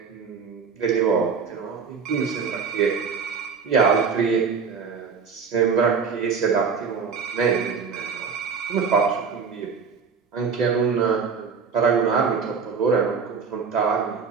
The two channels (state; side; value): quieter; left; 5.7 dB